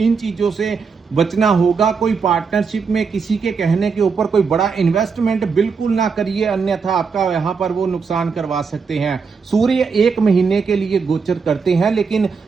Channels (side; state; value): left; quieter; 5.3 dB